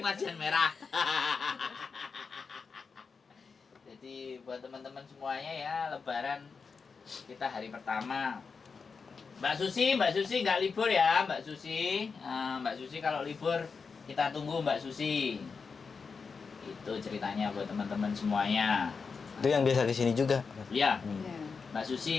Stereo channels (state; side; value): quieter; right; 5.2 dB